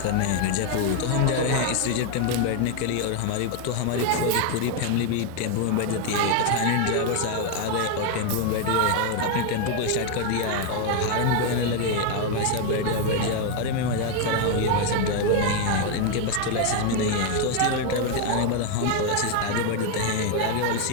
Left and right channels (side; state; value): both; different; correlation 0.01